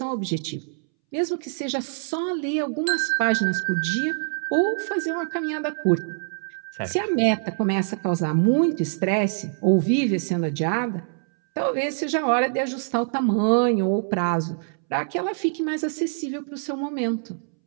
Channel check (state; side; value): silent; left; 62 dB below the other